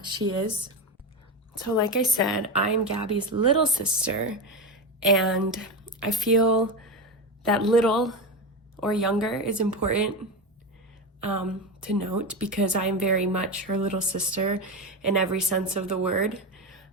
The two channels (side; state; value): both; normal; correlation 0.17